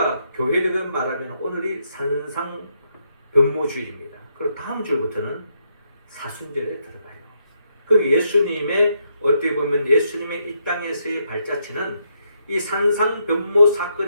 교회를 말하면 오늘이 산상변모주일입니다. 그리고 다음 주부터는 사순절에 들어가요. 그 예수님의 어떻게 보면 예수님의 이 땅에서의 발자취는 이 산상변모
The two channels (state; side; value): inverted; both; correlation -0.77